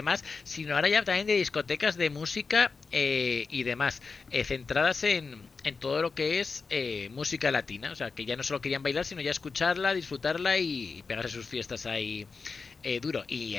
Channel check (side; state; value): right; quieter; 4.7 dB